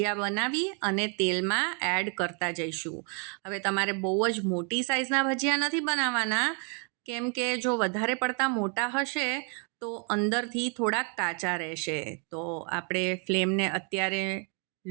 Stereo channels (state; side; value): quieter; left; 37.3 dB